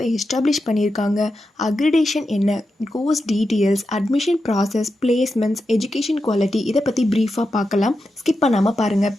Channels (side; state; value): both; normal; correlation 0.89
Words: எஸ்டாப்ளிஷ் பண்ணியிருக்காங்க, அக்ரிடேஷன் என்ன, course details, admission process, placements, education quality இதை பற்றி ப்ரீஃபாக பார்க்கலாம். ஸ்கிப் பண்ணாமல் பாருங்கள்.